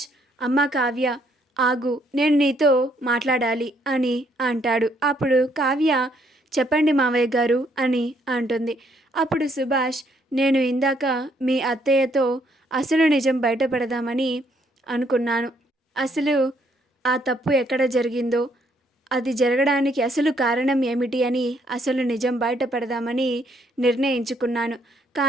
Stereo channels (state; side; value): normal; both; correlation 0.69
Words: అమ్మ కావ్య ఆగు, నేను నీతో మాట్లాడాలి అని అంటాడు. అప్పుడు కావ్య, చెప్పండి మావయ్య గారు అని అంటుంది. అప్పుడు సుభాష్, నేను ఇందాక మీ అత్తయ్యతో అసలు నిజం బయటపడదామని అనుకున్నాను. అసలు ఆ తప్పు ఎక్కడ జరిగిందో, అది జరగడానికి అసలు కారణం ఏమిటి అని అసలు నిజం బయటపడదామని నిర్ణయించుకున్నాను.